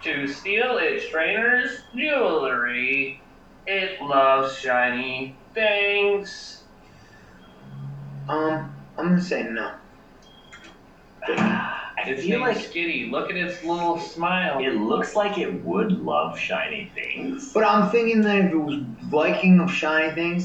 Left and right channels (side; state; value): both; identical; correlation 1.00